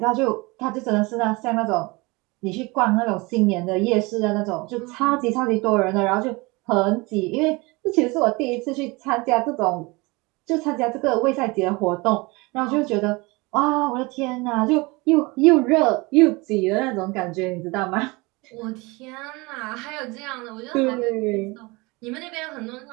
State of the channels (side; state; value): left; quieter; 25.0 dB